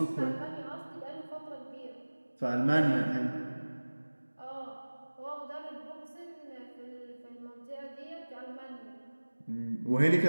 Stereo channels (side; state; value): both; inverted; correlation -1.00